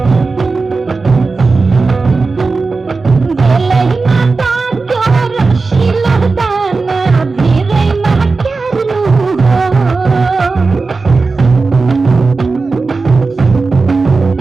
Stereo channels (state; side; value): quieter; left; 4.0 dB